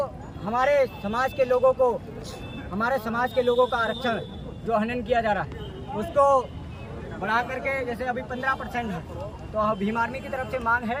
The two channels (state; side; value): identical; both; correlation 1.00